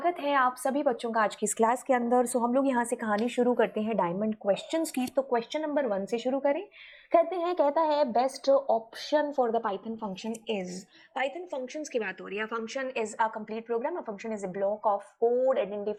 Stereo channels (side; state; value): both; identical; correlation 1.00